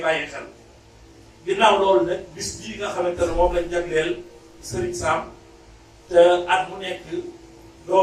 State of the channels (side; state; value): both; identical; correlation 1.00